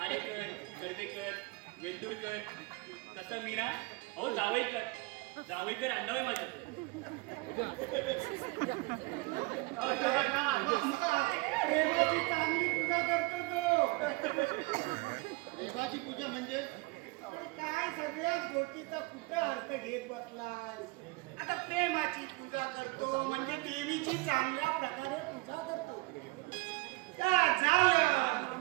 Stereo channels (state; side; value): quieter; left; 24.9 dB